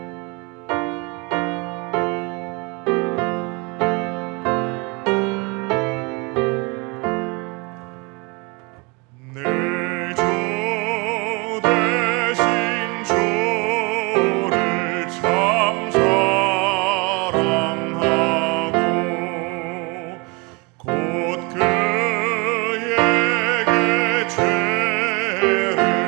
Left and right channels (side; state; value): left; quieter; 29.0 dB